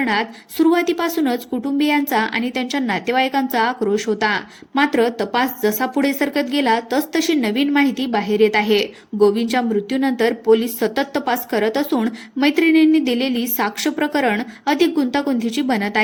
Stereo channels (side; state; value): both; identical; correlation 1.00